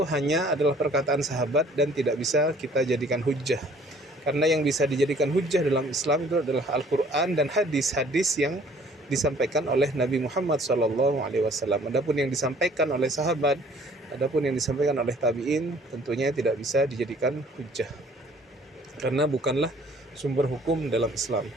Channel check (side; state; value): both; normal; correlation 0.55